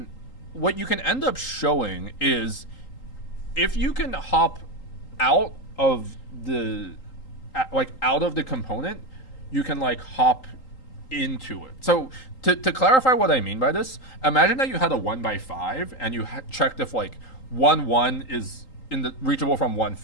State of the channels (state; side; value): late; right; 3.8 ms